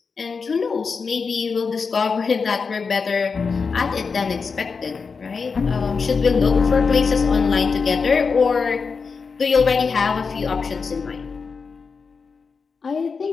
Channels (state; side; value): quieter; right; 5.1 dB